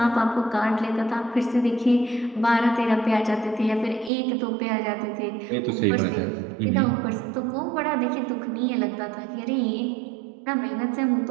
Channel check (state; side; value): drops out; left; at 4.1 s